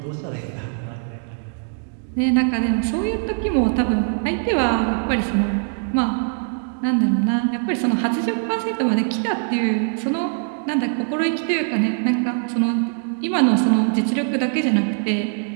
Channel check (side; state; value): left; silent; 62 dB below the other